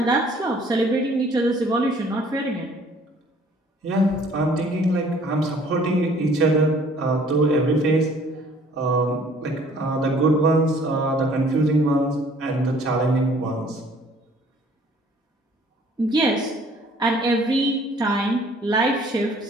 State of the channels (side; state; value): both; normal; correlation 0.56